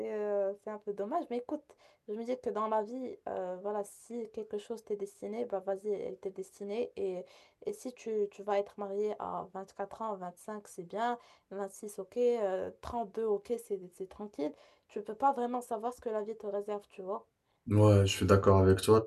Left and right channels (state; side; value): identical; both; correlation 1.00